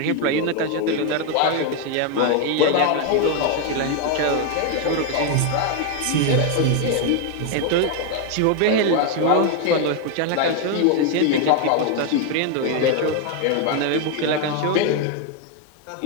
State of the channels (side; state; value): both; different; correlation 0.01